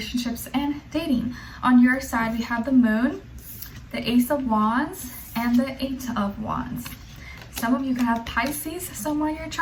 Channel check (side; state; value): both; identical; correlation 1.00